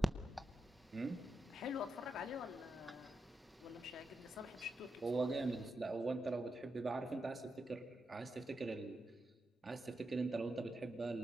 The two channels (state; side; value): normal; both; correlation 0.86